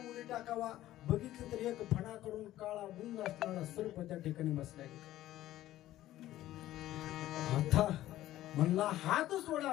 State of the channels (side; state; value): right; quieter; 14.4 dB